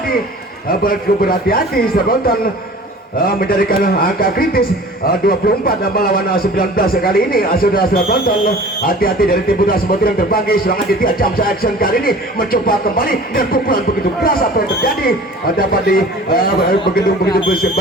berhati-hati saudara penonton menjadikan angka kritis 24 melawan 19 kali ini. Saudara-saudara penonton, hati-hati dari tim putra Semut yang terbagi. Serangan Aditya jump action kali ini mencoba kembali dan pukulan begitu keras. Apa yang terjadi dapat di begitu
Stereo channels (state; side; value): normal; both; correlation 0.44